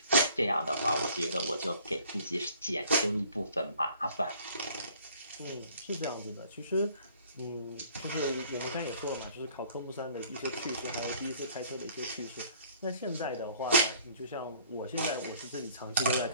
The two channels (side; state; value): both; inverted; correlation -0.56